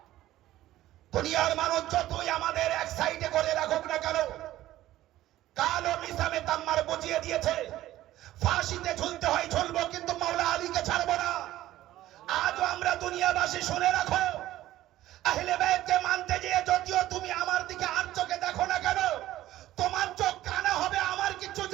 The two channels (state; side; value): quieter; left; 14.7 dB